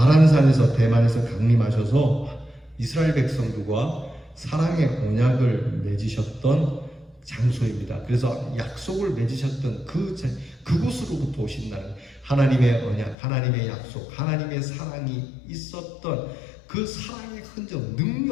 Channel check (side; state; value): right; drops out; at 13.2 s